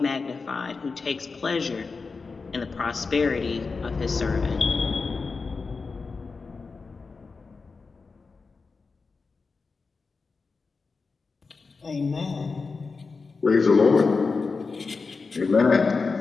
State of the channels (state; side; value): quieter; right; 4.4 dB